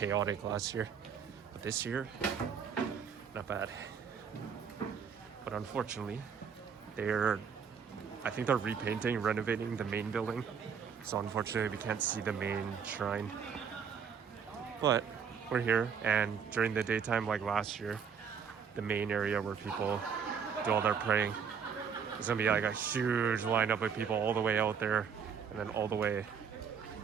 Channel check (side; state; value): left; quieter; 6.8 dB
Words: last year. But this year, not bad. But unfortunately, I think they're repainting, renovating the main building. So unfortunately, we can't see the main shrine. But we're here, and during the daytime, like last year, the main area where people do all their praying, there's gonna be like a huge lineup of people all the way out there, and then all the way